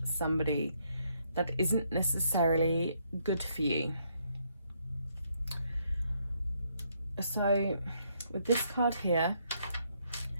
somebody that isn't necessarily good for you. So with this card here,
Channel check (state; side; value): inverted; both; correlation -0.73